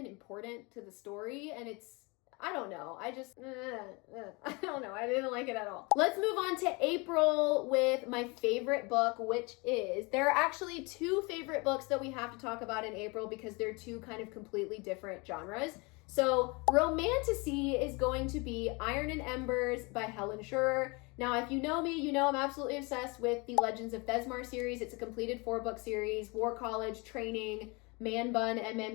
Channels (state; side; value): quieter; right; 28.0 dB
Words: important to the story, and it's, I don't know. I don't know. I didn't like it at all. Let's move on to April with my favorite book, which is, there are actually 2 favorite books that we have to talk about in April because they're 2 kind of completely different genres. So Romantasy is going to be Iron and Embers by Helen Schurer. Now, if you know me, you know I'm absolutely obsessed with the Legends of Thesmar series. It's a completed 4-book series, War College, Training, Man Bun,